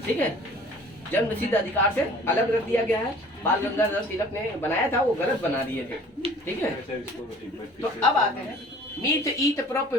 ठीक है, जन्मसिद्ध अधिकार से अलग रख दिया गया है। बाल गंगाधर तिलक ने बनाया था, वो गलत बना दिए थे, ठीक है। तो अब आते हैं meth, eth, prop,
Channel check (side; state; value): both; normal; correlation 0.49